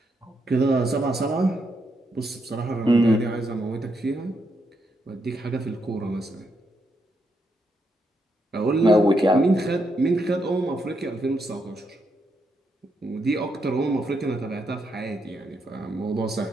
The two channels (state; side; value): normal; both; correlation 0.79